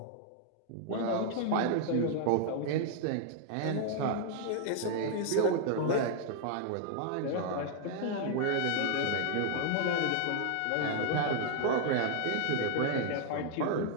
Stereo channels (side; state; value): both; different; correlation -0.01